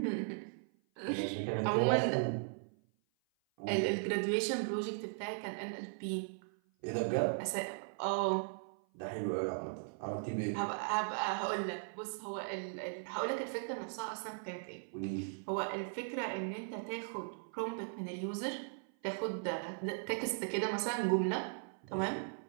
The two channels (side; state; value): left; silent; 52 dB below the other